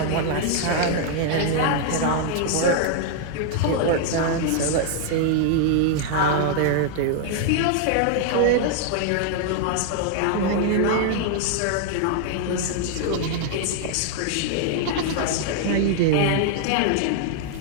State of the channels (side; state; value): both; different; correlation 0.00